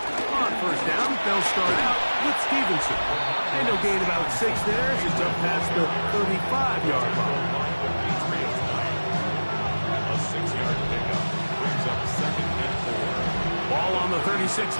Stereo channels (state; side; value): inverted; both; correlation -1.00